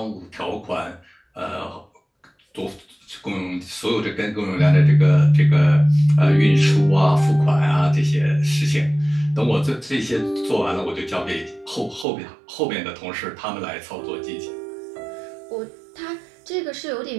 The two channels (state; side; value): drops out; left; at 12.1 s